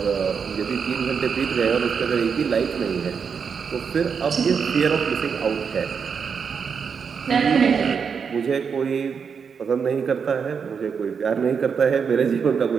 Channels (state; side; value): quieter; left; 6.3 dB